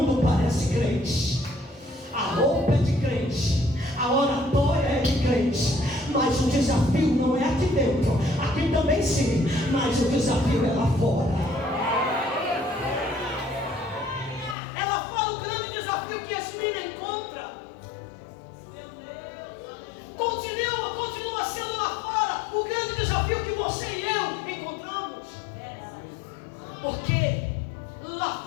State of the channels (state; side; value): drops out; right; at 14.6 s